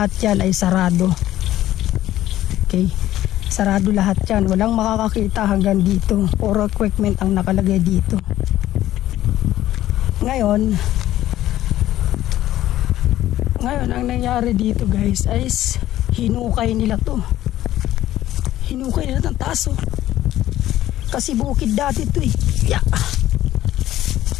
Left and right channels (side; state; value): right; quieter; 13.8 dB